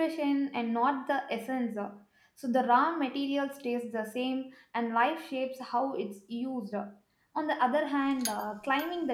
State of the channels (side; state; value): both; identical; correlation 1.00